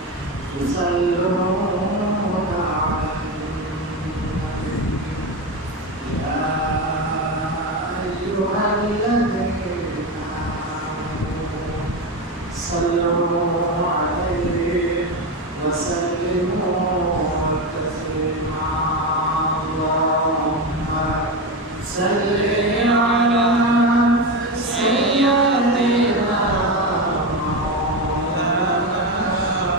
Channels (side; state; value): both; normal; correlation 0.16